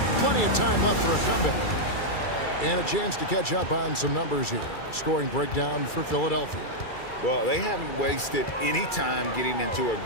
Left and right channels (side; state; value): right; late; 2.3 ms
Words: plenty of time left for a comeback. And a chance to catch up on some numbers here. Scoring breakdown for Philadelphia. Well, they haven't wasted any time getting into a